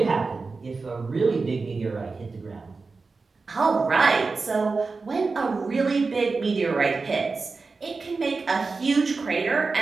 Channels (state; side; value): quieter; left; 4.2 dB